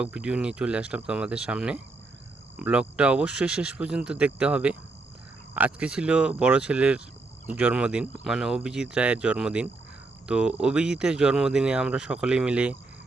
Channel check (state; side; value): quieter; left; 3.4 dB